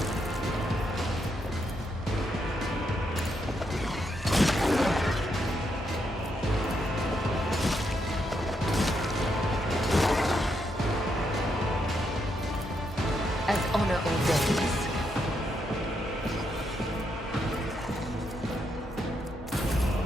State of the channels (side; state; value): both; normal; correlation 0.79